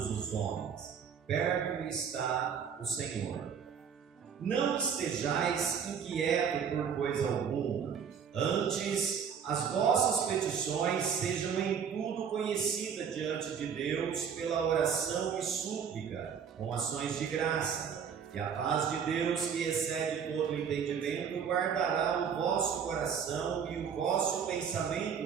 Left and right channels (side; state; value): left; quieter; 7.2 dB